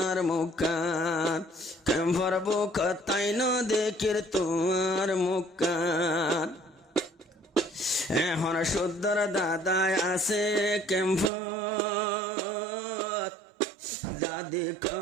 মুখখান ক্যাম্পর বুক তাই না দেখির তোমার মুখখান এখন সুন্দর দাদা আছে ক্যাম্পত দাদি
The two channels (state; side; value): drops out; left; at 11.3 s